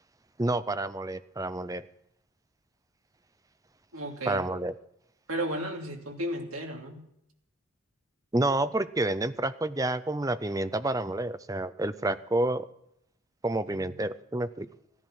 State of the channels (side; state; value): both; normal; correlation 0.59